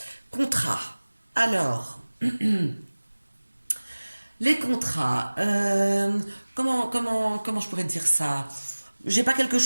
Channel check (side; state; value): both; inverted; correlation -1.00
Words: Contrat. Alors, les contrats. Comment je pourrais dire ça? J'ai pas quelque